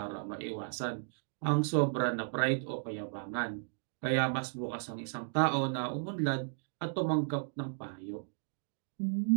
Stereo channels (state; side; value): silent; left; digital silence